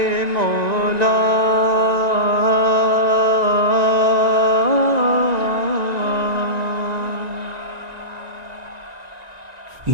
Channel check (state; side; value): late; left; 1.9 ms